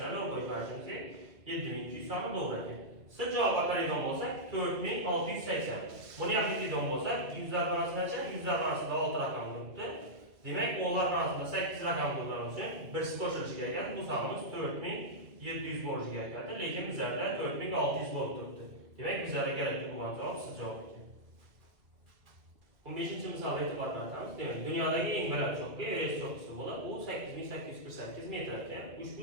doğru koyup verdiğimiz gerek. 7200 sanı doğru eken. Size cevap bakarıydan olsak 4680. Bunu yapıydığından olsak yüzler fanasına çarpık. Yüzler fanasında 6 rakam durdu. Demek onlar arasında 8 rakam durduğun için birisi koşuluşu gereken bu sanımız 4700 borcu gerekendir. Lakin bizlerdə 4600 volt tuttu. Demek bizlere gerekli bu cevap siz cevap etti. 15. misala itibar karatamız. Demek dünyadaki en belirli çokluğu Everest çoklusu bulup bu 8848 metreken. Bu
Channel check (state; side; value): late; left; 2.2 ms